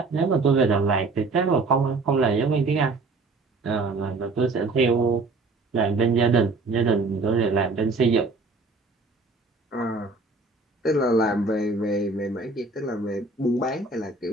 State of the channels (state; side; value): quieter; left; 3.6 dB